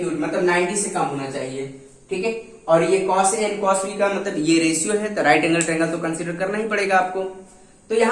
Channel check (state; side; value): identical; both; correlation 1.00